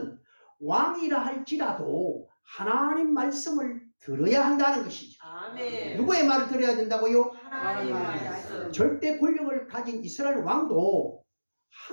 왕이라 할지라도 하나님 말씀을 들어야 한다는 것이죠. 아멘. 누구의 말을 들어야 된다고요? 하나님의 말씀. 절대 권력을 가진 이스라엘 왕도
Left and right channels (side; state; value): both; inverted; correlation -1.00